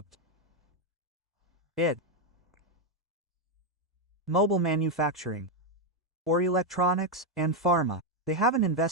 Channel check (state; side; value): normal; both; correlation 0.03